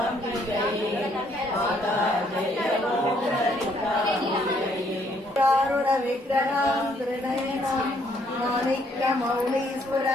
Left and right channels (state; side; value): normal; both; correlation 0.68